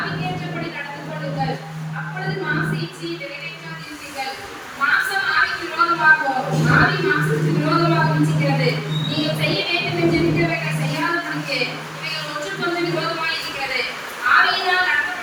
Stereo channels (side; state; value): both; identical; correlation 1.00